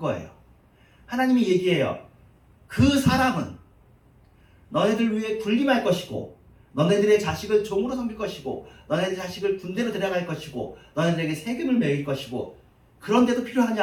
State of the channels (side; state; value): both; identical; correlation 1.00